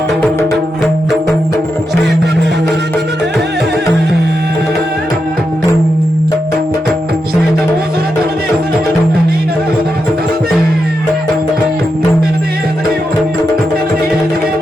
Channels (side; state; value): both; normal; correlation 0.86